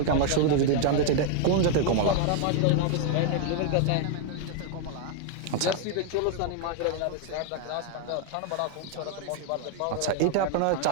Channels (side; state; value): both; different; correlation 0.00